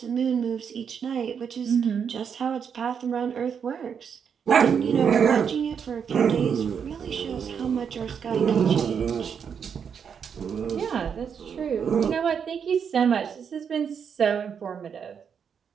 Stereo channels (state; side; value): quieter; left; 7.1 dB